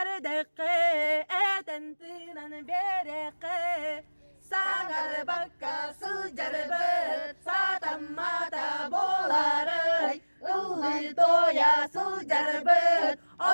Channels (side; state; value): both; inverted; correlation -1.00